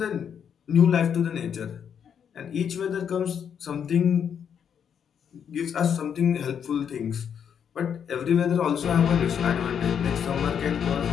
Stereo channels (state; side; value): quieter; right; 7.9 dB